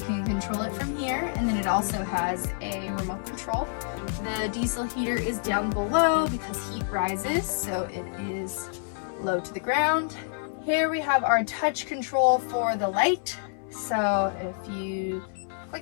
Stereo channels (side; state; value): right; silent; 60 dB below the other